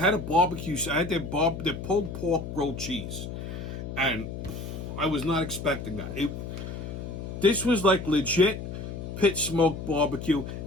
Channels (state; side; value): noise; left; hum, 7 dB below the sound